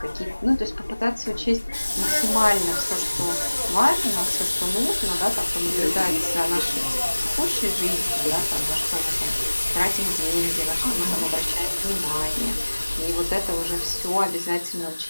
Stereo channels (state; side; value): inverted; both; correlation -1.00